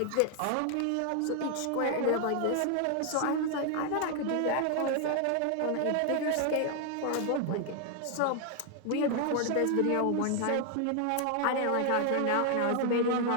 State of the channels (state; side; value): different; both; correlation 0.00